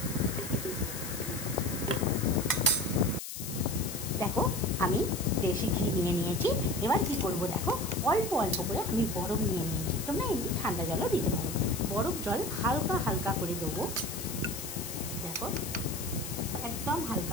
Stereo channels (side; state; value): left; noise; hiss, 8 dB below the sound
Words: দেখো, আমি দেশি ঘি নিয়ে নিয়েছি। এবার কি করব, দেখো অল্প অল্প করে আমি বরফ নিয়ে নিয়েছি। তোমরা এমনি ঠান্ডা জলও দিতে পারো। বরফ জল হালকা হালকা করে দেবো। দেখো, একদম